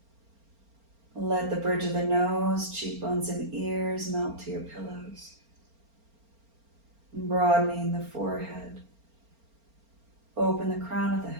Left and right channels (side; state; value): left; late; 4.4 ms